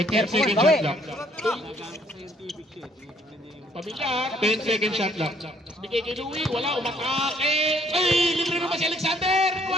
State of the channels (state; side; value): normal; both; correlation 0.64